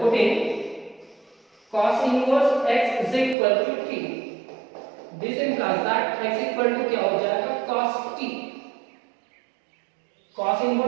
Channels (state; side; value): drops out; left; at 3.4 s